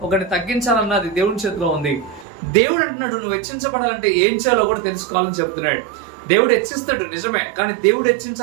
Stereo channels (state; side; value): drops out; left; at 2.2 s